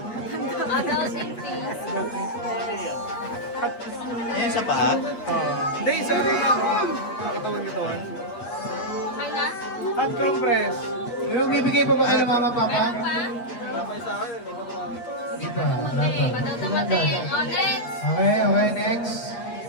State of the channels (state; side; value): late; right; 8.4 ms